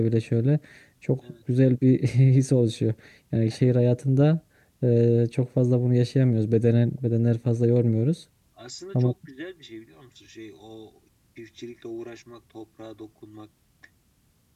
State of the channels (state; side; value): identical; both; correlation 1.00